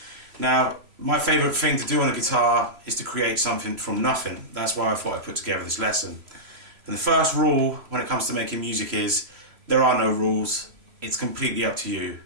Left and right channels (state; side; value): late; left; 3.0 ms